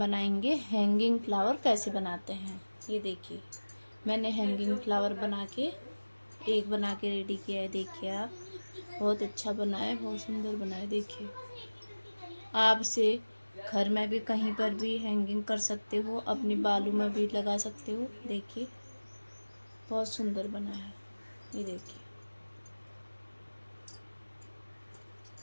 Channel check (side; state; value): both; inverted; correlation -1.00